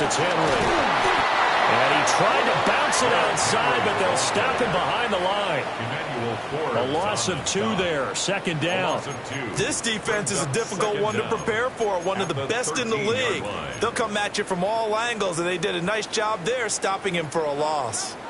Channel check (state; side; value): identical; both; correlation 1.00